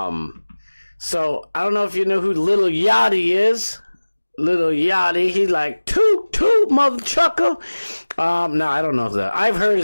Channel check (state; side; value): inverted; both; correlation -1.00